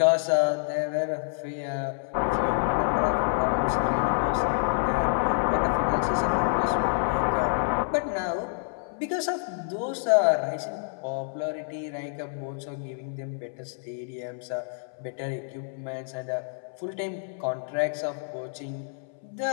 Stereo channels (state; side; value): silent; right; 60 dB below the other